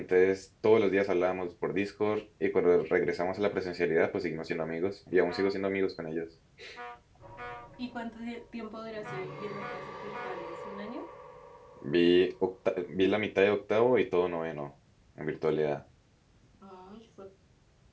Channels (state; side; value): identical; both; correlation 1.00